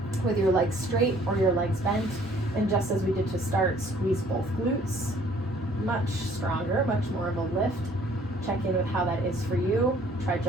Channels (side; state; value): both; normal; correlation 0.58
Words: with your legs straight or your legs bent, and just as we did to start, squeeze both glutes. Much stronger, much more of a lift. Check in with how that is for you. Try